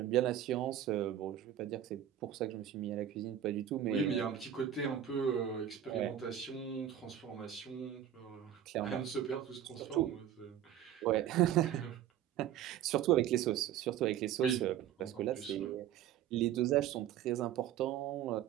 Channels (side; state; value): left; quieter; 10.5 dB